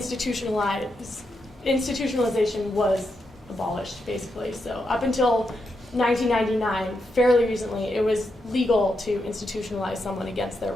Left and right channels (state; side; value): normal; both; correlation 0.84